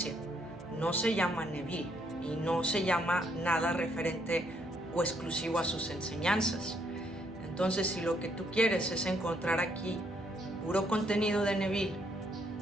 no se llama Neville y no se llama nada referente o exclusivo a sus enseñanzas. Entonces, si lo que tú quieres es encontrar aquí puro contenido de Neville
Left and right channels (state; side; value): normal; both; correlation 0.72